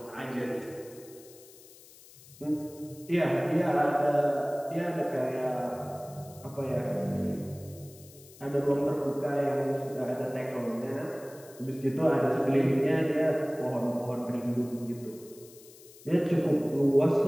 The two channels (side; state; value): left; noise; hiss, 22 dB below the sound